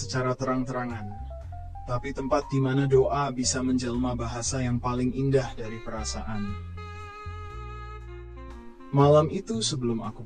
terang-terangan, tapi tempat di mana doa bisa menjelma bahasa yang paling indah dari perasaan. Malam itu sebelum aku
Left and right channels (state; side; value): identical; both; correlation 1.00